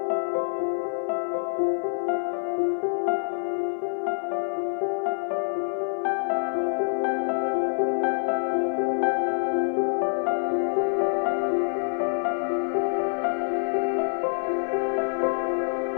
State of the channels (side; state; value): right; silent; 61 dB below the other